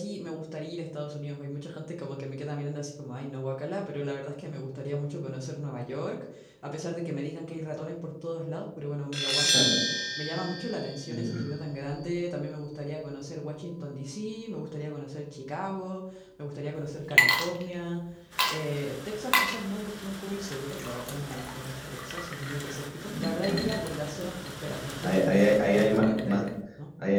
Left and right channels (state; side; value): identical; both; correlation 1.00